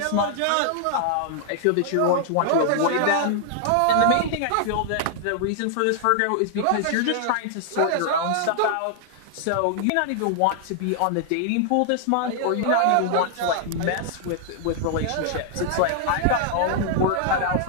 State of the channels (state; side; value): different; both; correlation -0.01